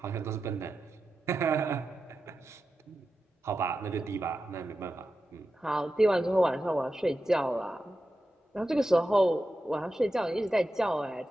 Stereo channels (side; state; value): both; normal; correlation 0.91